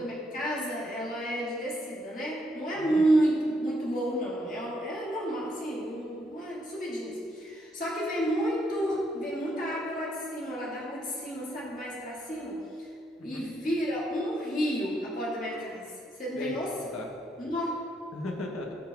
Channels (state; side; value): normal; both; correlation 0.74